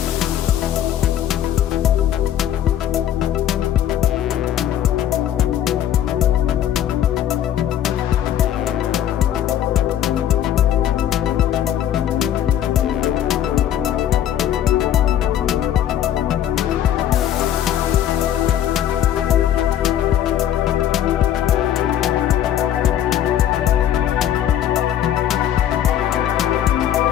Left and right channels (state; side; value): quieter; right; 10.9 dB